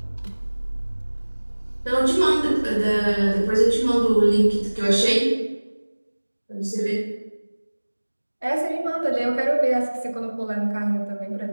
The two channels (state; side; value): inverted; both; correlation -1.00